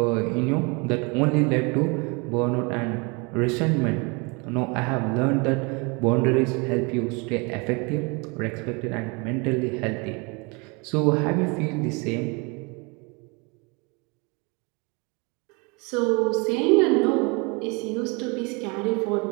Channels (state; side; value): quieter; left; 29.9 dB